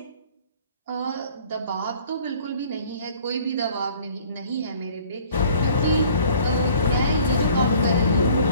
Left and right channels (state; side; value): inverted; both; correlation -0.53